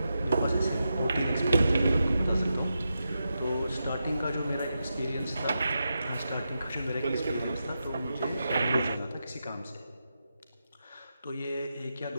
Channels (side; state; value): both; inverted; correlation -0.88